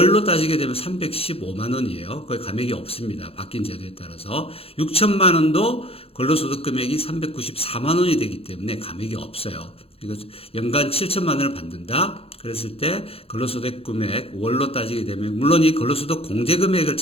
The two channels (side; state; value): right; late; 0.28 ms